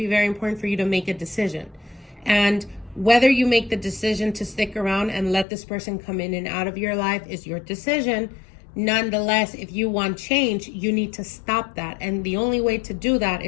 very important for you to make a decision. And whether you make the decision to stick around and let this person come in and out of your life is your decision. Nonetheless, if you want change, you need to stop that. And the only way to do that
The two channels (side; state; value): right; drops out; at 5.5 s